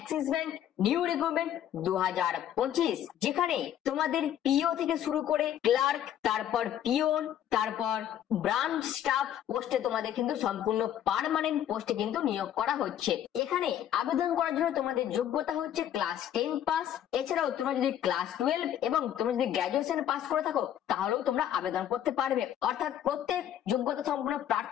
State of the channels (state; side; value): quieter; right; 10.7 dB